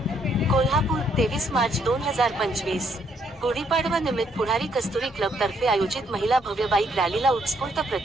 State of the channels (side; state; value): both; normal; correlation 0.71